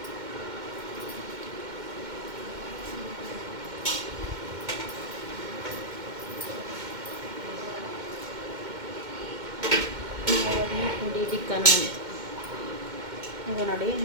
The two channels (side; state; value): left; late; 2.1 ms